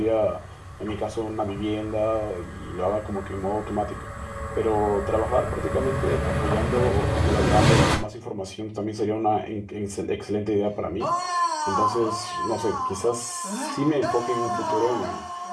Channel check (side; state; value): both; identical; correlation 1.00